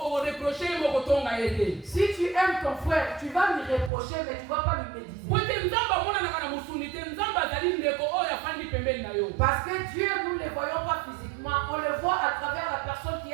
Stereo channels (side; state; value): left; drops out; at 3.9 s